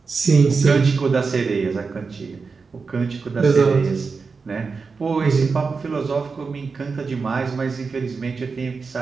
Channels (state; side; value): quieter; left; 4.8 dB